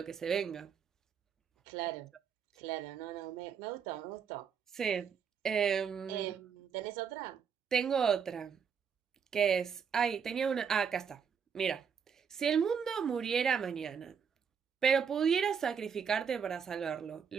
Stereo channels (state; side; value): quieter; left; 6.9 dB